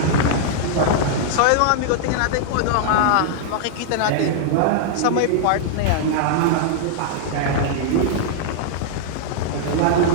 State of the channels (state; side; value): different; both; correlation -0.01